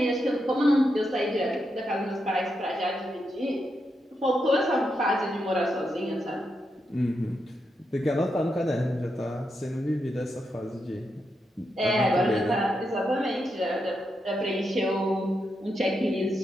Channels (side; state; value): both; normal; correlation 0.84